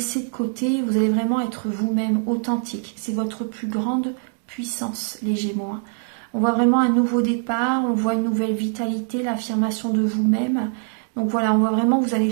de côté. Vous allez vraiment être vous-même authentique. C'est votre plus grande puissance, les Gémeaux. Hein. On voit vraiment un nouveau départ. On voit une nouvelle vitalité, l'affirmation de vous-même. Donc voilà, on voit vraiment que vous allez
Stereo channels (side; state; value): left; silent; 60 dB below the other